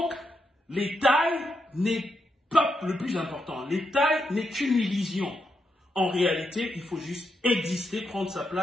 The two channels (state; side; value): normal; both; correlation 0.82